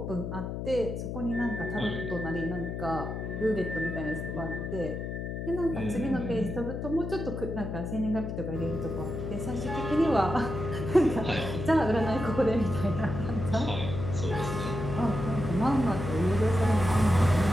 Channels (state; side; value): noise; left; hum, 5 dB below the sound